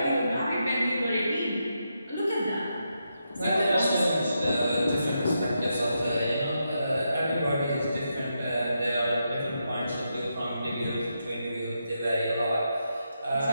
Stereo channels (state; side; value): inverted; both; correlation -0.84